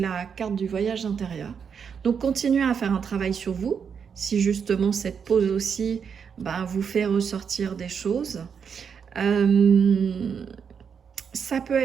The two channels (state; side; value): quieter; left; 6.8 dB